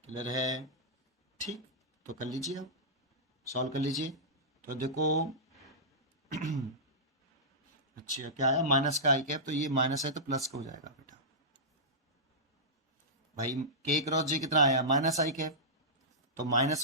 क्लियर है? ठीक, तो कर लीजिए, अब सॉल्व कर लीजिए। तो देखो अच्छा क्या आया, माइनस का आई कैप, तो ये माइनस है तो प्लस का हो जाएगा बेटा। भाई के क्रॉस जे कितना आया, माइनस आई कैप, तो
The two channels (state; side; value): normal; both; correlation -0.16